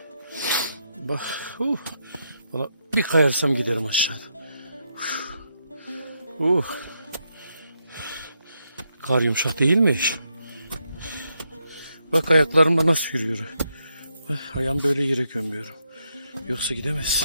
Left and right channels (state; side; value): inverted; both; correlation -0.80